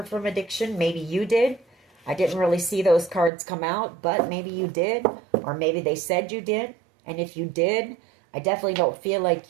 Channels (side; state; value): left; drops out; at 3.3 s